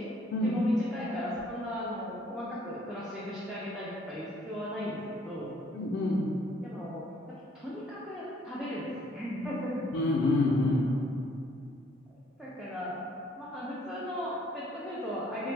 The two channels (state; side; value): normal; both; correlation 0.62